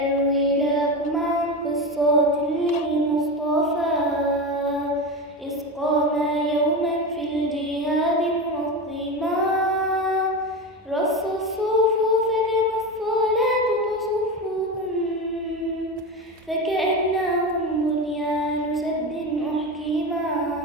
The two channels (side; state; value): both; normal; correlation 0.21